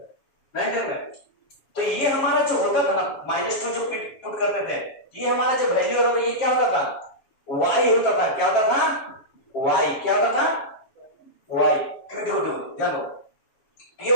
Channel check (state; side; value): late; right; 7.1 ms